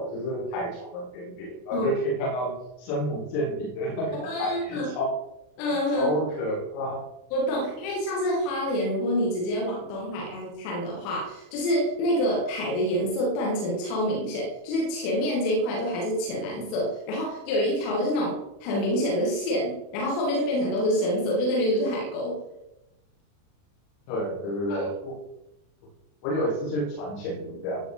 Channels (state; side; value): late; right; 40 ms